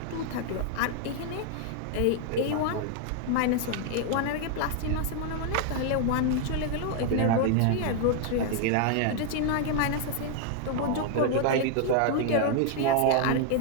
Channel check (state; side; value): different; both; correlation 0.00